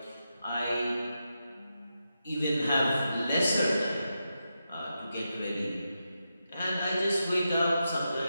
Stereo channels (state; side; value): inverted; both; correlation -0.87